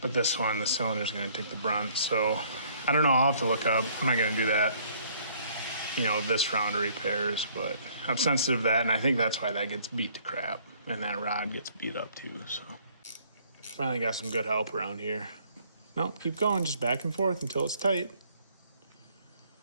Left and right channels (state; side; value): inverted; both; correlation -0.61